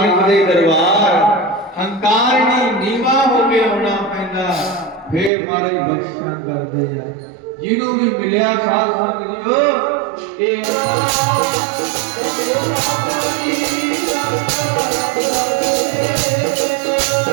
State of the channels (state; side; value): drops out; left; at 5.3 s